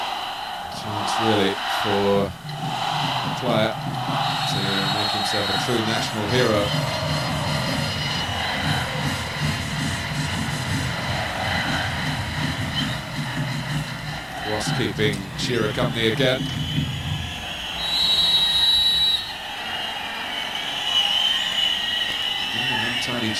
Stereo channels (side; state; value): both; identical; correlation 1.00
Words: Chance really for a player to make himself a true national hero. Ross keeping Shearer company again. Tiny